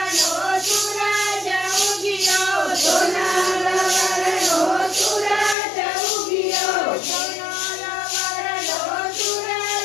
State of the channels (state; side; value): drops out; right; at 5.6 s